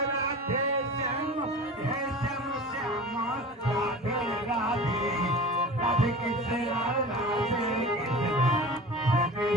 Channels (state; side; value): normal; both; correlation 0.36